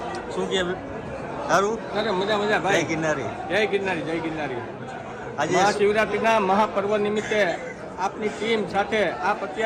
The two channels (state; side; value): identical; both; correlation 1.00